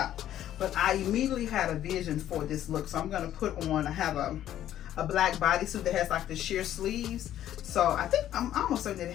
but I immediately had a vision for this look. So I'm going to put on, I have a black bodysuit that has like the sheer sleeves. So I think I'm almost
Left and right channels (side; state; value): right; quieter; 11.9 dB